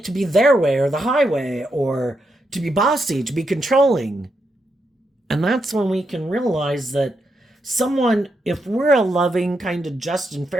to be their way or the highway, or to be bossy, to be controlling. And that's when we can realize that someone, if we're a loving, kind of just and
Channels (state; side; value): normal; both; correlation 0.82